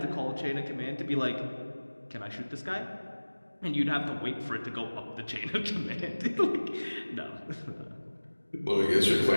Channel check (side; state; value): both; inverted; correlation -1.00